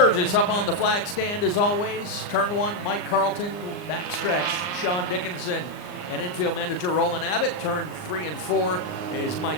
up on the flag stand as always. Turn 1, Mike Carlton. Backstretch, Sean Dickinson. And infield manager Roland Abbott. Turn 3 and 4 is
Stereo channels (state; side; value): late; right; 39 ms